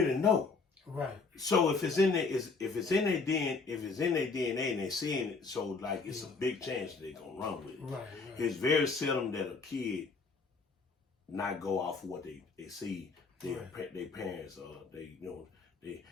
know. Right. So if it's in their DNA and they're seeing it, so like it's a big chance they're gonna run with it. Right. It's very seldom that a kid not go off of what they see their parents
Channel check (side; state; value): right; quieter; 4.3 dB